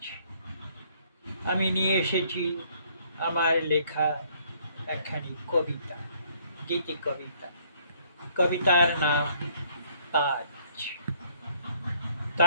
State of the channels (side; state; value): both; inverted; correlation -0.63